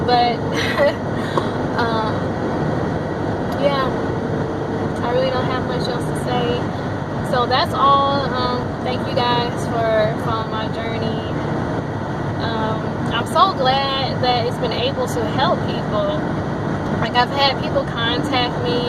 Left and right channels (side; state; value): both; identical; correlation 1.00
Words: But, yeah, I really don't have much else to say. So that's all. Thank you guys for following my journey. I'm so glad that it's been able to help people. Like, I've had people contact me,